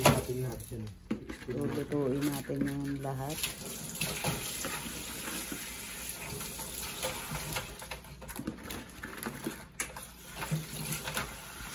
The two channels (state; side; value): identical; both; correlation 1.00